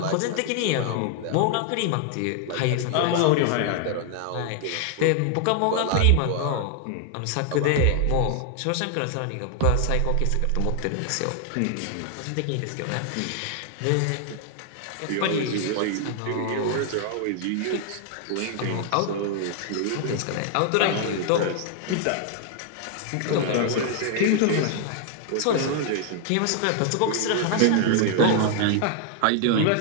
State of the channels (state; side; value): different; both; correlation 0.00